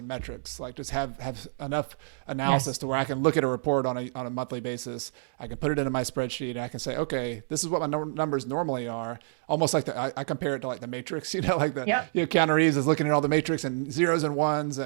metrics. Just have enough analysis to where I can look at a report on a monthly basis. I can put it into my spreadsheet and I can say, okay, this is what my numbers normally are. Almost like I compare it to the matrix, Keanu Reeves is looking at all the matrix and zeros and ones.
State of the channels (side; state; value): left; silent; digital silence